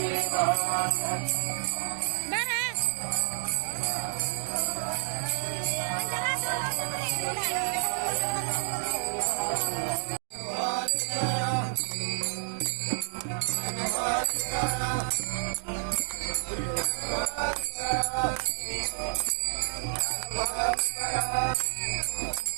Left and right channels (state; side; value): silent; left; digital silence